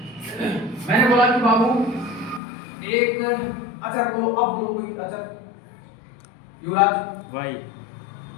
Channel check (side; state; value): right; drops out; at 2.4 s